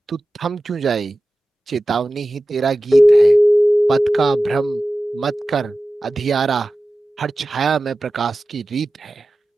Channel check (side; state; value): both; normal; correlation 0.95